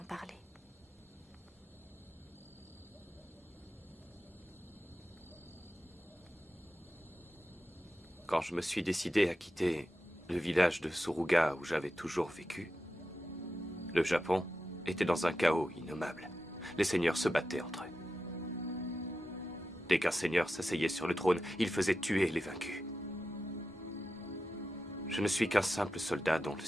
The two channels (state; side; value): normal; both; correlation 0.91